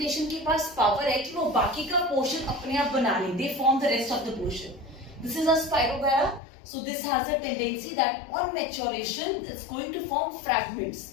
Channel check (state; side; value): drops out; right; at 6.4 s